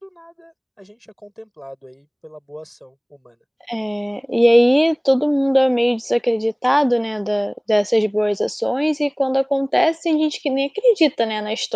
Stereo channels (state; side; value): identical; both; correlation 1.00